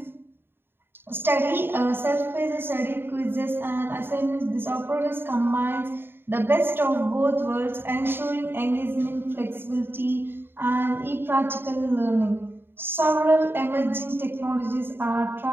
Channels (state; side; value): late; left; 0.10 ms